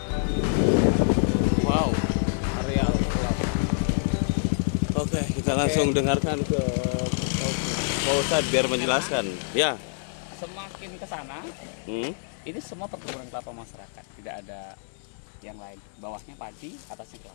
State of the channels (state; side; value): silent; right; 59 dB below the other